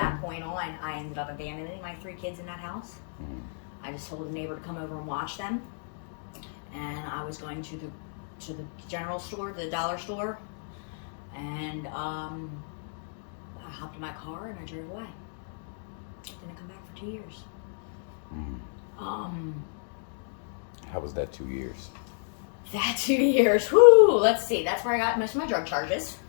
point on, I ended up abandoning my 3 kids in that house. Mm-hmm. I just told a neighbor to come over and watch them. And I was going to the general store, the dollar store. And I hopped in my car and I drove away. Didn't come back for 2 years. Mm-hmm. How was that 2 years? That 2 years, whoo, let's see. That's where I got most of my drug charges.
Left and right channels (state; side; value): silent; right; digital silence